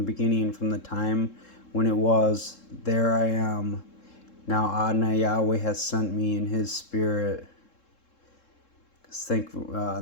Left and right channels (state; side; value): late; right; 3.7 ms